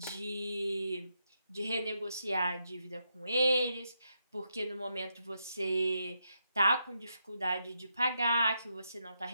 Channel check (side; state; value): both; inverted; correlation -0.83